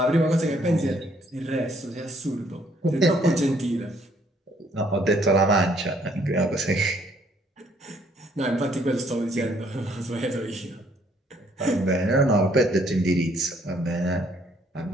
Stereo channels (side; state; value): both; normal; correlation 0.65